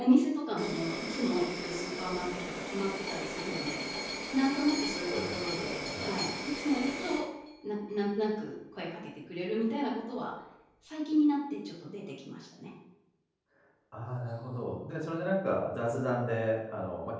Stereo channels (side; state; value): both; identical; correlation 1.00